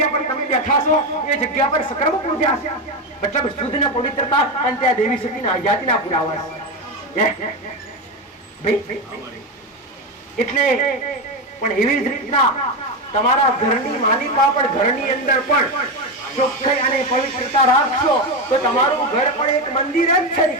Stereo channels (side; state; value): both; normal; correlation 0.13